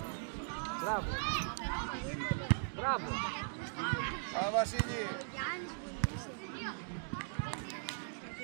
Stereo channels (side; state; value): left; silent; digital silence